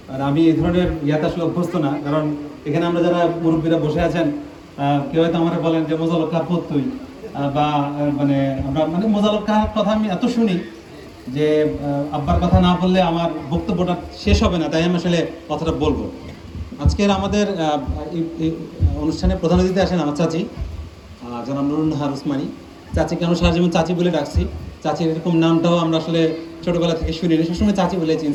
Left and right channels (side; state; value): both; identical; correlation 1.00